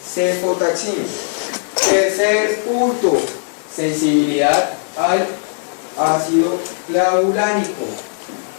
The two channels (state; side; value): silent; right; digital silence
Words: cefotaxima. Tercer punto. Sensibilidad al ácido clavulánico.